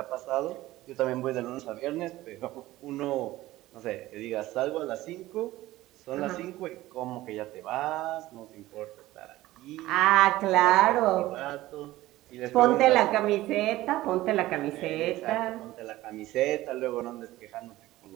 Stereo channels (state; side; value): quieter; left; 16.8 dB